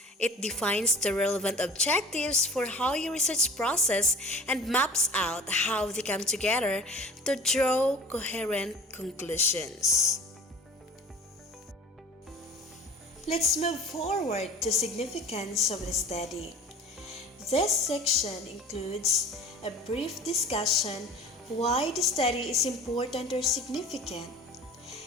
It defines the relevant objectives for how your research process and maps out how they come together to draw coherent conclusions. Let's move forward to significance of the study. This section includes a brief discussion why the study is important or significant.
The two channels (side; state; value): both; normal; correlation 0.42